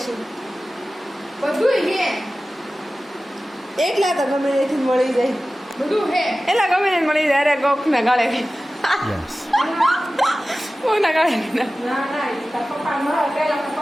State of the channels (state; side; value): normal; both; correlation 0.96